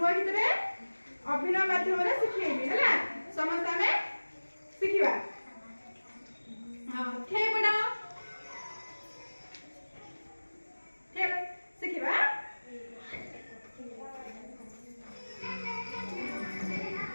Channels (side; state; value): both; inverted; correlation -1.00